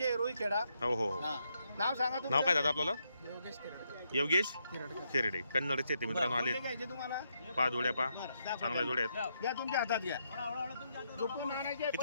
रुईखेडा. हो हो हो. हा. नाव सांगा तुमचं. नाव काय दादा आपल्याला? योगेश खेरडे. कन्नडचे ते मित्रांनो आले. कोणते घ्यायचे तुम्हाला? 5 जोड्या पा बरं, दाखवा. चांगल्या जोड्या आहेत. घ्या तुमच्या हातात घ्या. झोपून आणायचे.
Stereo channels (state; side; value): inverted; both; correlation -0.79